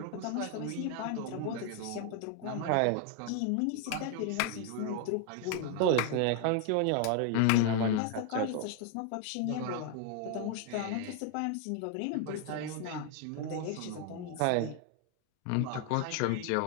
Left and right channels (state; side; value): different; both; correlation 0.01